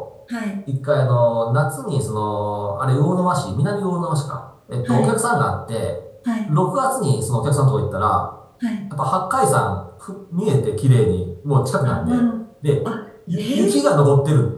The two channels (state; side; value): identical; both; correlation 1.00